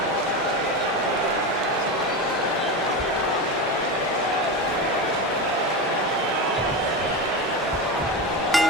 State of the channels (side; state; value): both; normal; correlation 0.20